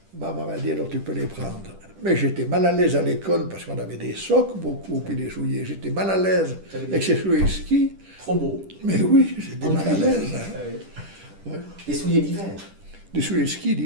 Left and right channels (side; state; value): left; late; 10 ms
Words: Maman m'a dit, alors tu peux les prendre. Mais j'étais mal à l'aise à l'école parce qu'on avait des socs beaucoup, puis des souliers. J'étais mal à l'aise avec ces souliers de ski. Trop beau. Mais oui, j'étais mal à l'aise. Hein. Ouais. Ouais. Des souliers d'hiver. Des souliers de ski